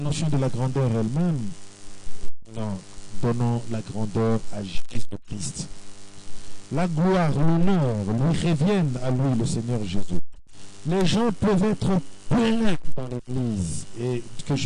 de la grandeur elle-même, non, donnons la grandeur à Jésus-Christ. La gloire, l'honneur lui reviennent à lui, le Seigneur Jésus. Les gens peuvent être pleins dans l'église, et que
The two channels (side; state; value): both; identical; correlation 1.00